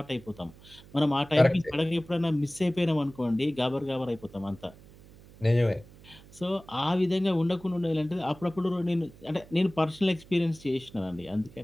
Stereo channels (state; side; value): noise; right; hum, 22 dB below the sound